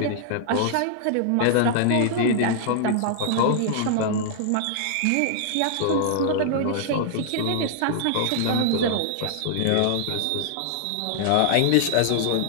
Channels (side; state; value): both; different; correlation -0.01